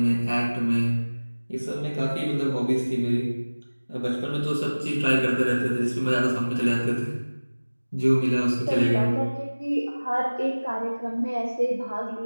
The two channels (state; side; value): inverted; both; correlation -1.00